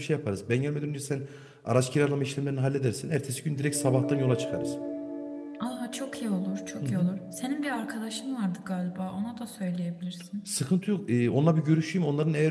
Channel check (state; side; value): identical; both; correlation 1.00